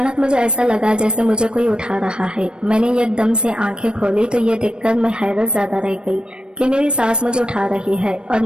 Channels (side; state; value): left; late; 0.054 ms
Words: मुझे ऐसा लगा जैसे मुझे कोई उठा रहा है। मैंने एकदम से आंखें खोली तो ये देखकर मैं हैरत ज्यादा रह गई कि मेरी सास मुझे उठा रही है और